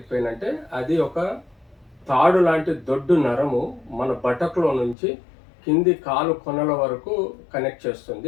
పెయిన్ అంటే అది ఒక తాడు లాంటి దొడ్డు నరము మన బటక్లో నుంచి కింది కాలు కొనల వరకు కనెక్ట్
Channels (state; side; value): drops out; right; at 5.0 s